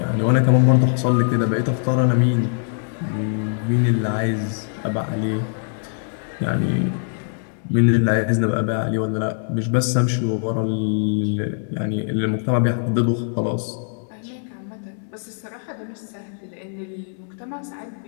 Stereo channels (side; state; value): right; silent; 64 dB below the other